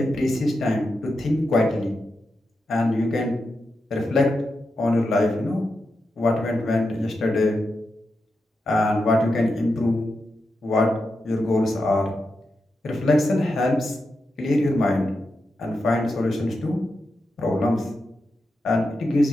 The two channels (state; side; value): normal; both; correlation 0.88